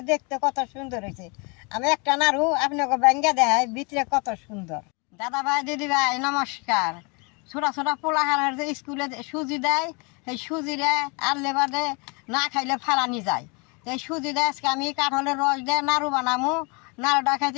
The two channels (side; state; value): right; quieter; 31.6 dB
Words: দেখতে কত সুন্দর হয়েছে আমি একটা নাড়ু আপনাকে ব্যাঙ্গে দেয় ভিতরে কত সুন্দর দাদা ভাই দিদি ভাই নমস্কার ছোটা ছোটা পোলাহানের যে স্কুলে সুজি দেয় সেই সুজিরে আনলে বাদে না খাইলে ফালানি যায় এই সুজি দেয় আজকে আমি কাঁঠালের রস দিয়ে নাড়ু বানামু নাড়ুটা